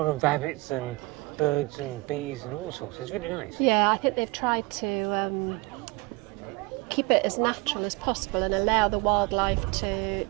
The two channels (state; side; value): quieter; left; 24.2 dB